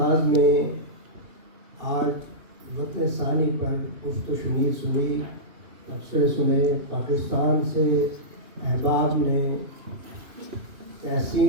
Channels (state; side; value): late; left; 2.7 ms